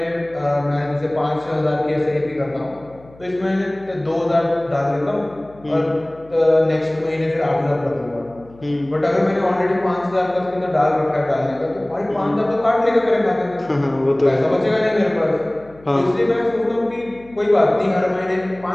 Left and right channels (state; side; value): noise; left; hum, 24 dB below the sound